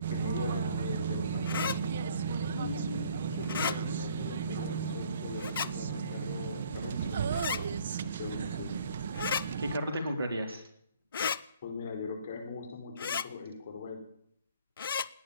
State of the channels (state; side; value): inverted; both; correlation -0.58